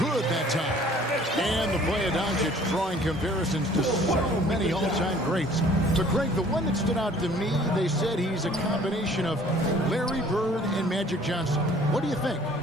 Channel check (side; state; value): both; normal; correlation 0.54